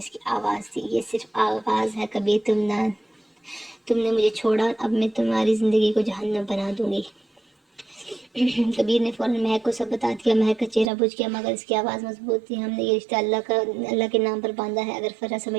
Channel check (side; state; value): left; drops out; at 10.9 s